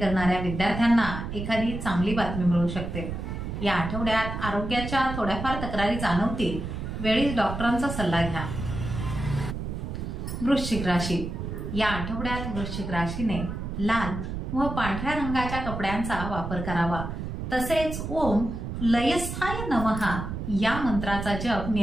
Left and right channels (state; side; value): noise; right; rumble, 5 dB below the sound